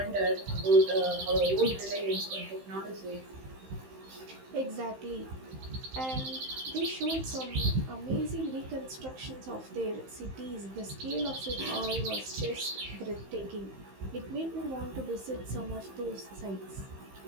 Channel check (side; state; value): left; late; 15 ms